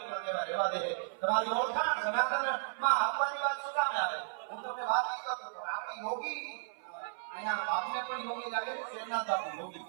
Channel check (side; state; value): left; silent; 55 dB below the other